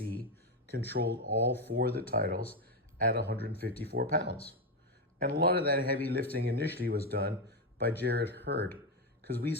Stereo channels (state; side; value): normal; both; correlation 0.09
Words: controlled all 4 of the titles at 154 pounds. And a lot of that heavy lifting initially was done by Jarrett Hurd, because we